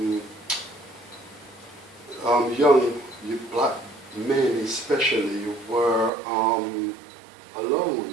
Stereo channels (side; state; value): left; drops out; at 6.1 s